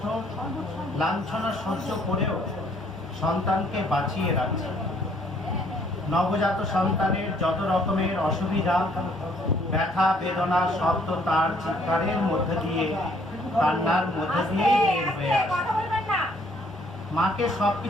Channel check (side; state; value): both; normal; correlation 0.64